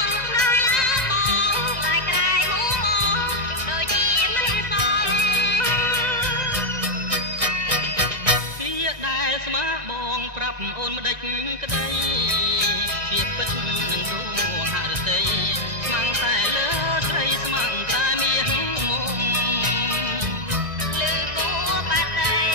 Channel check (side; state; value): left; late; 1.6 ms